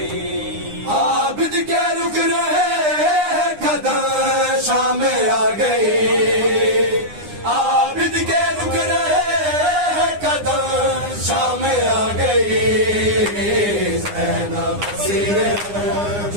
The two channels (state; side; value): late; left; 9.8 ms